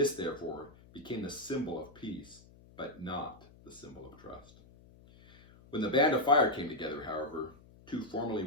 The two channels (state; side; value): noise; left; hum, 24 dB below the sound